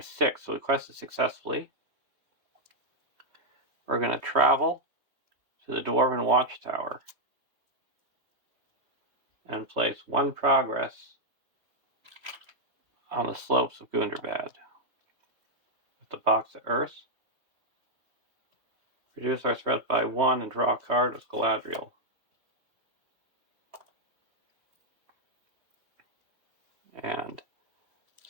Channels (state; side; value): late; left; 2.8 ms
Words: 6. So we quested successfully. We're going to travel to the Dwarven Watchtower and place 1 progress on the slopes of Gunderbad. With the box of Earth, reduce our threat by 1 and draw a card as Galadriel. And